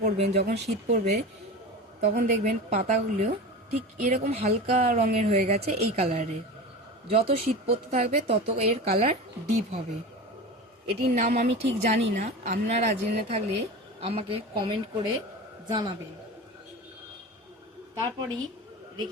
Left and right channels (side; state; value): both; normal; correlation 0.29